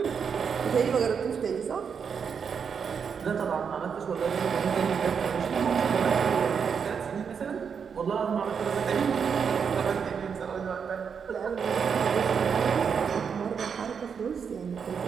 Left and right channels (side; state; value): left; quieter; 6.6 dB